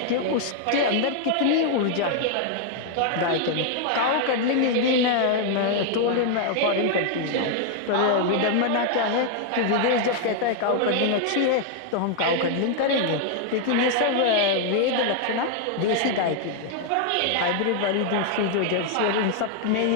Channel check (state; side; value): different; both; correlation 0.00